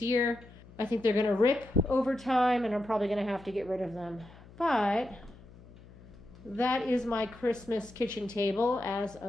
year. I think they're going to rip over time, and I'm probably going to have to get rid of them. But that is my Christmas kitchen table as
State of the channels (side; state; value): left; noise; hum, 21 dB below the sound